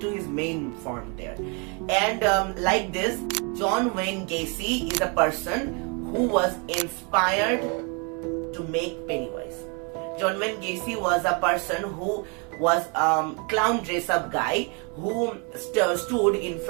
his main form there. And like this, John Wayne Gacy is a person who was inspired to make Pennywise. John Wayne Gacy was a person who was clown dress-up guy who stood in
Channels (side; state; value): left; quieter; 34.0 dB